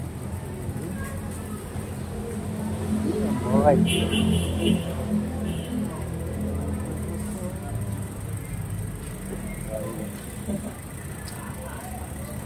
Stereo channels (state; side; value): identical; both; correlation 1.00